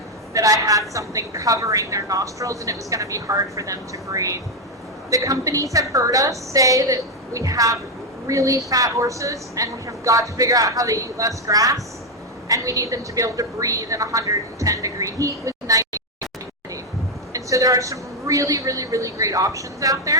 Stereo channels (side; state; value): both; normal; correlation 0.04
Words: that I had something covering their nostrils and it was going to be hard for them to breathe. The companies have heard us say that we have really fat horses and we have got to figure out how they eat less grass, and we need them to be able to breathe in 110 degree heat with 90 humidity. And so there are some really, really, really great options out